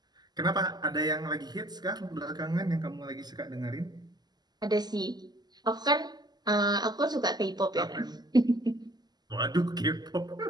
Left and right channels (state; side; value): late; left; 0.20 ms